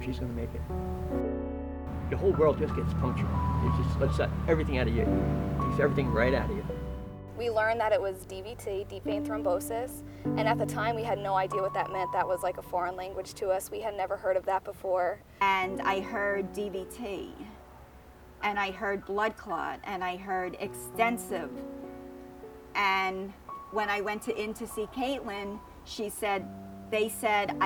she's going to make it. The whole world just gets punctured. It just lets everything out of you. It takes everything right out of you. We learned that it was DVT, deep vein thrombosis, and at the time we had no idea what that meant. That was like a foreign language to us. We had never heard of that before. And I heard DVT, and I heard blood clot, and I heard extensive. And when I went in to see Caitlin, they said,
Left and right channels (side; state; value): both; identical; correlation 1.00